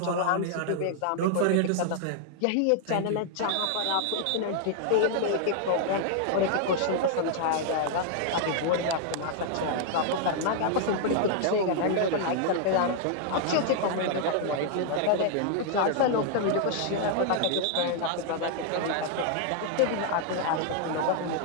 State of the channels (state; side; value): different; both; correlation 0.00